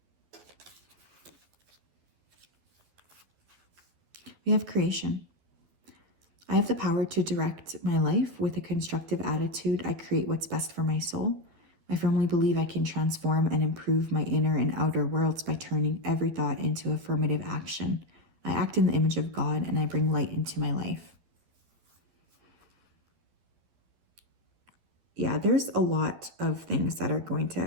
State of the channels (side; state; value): left; late; 12 ms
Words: We have creation. I have the power to direct my life with a constructive attitude. I create what's best for my soul. I firmly believe I can transform and improve my inner and outer worlds by turning every thought into affirmative action. I act in the image of God and I bring light into my life. Yeah, there's a lot of things that are going to